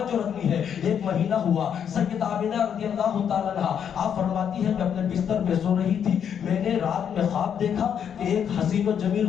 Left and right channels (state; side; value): quieter; right; 8.3 dB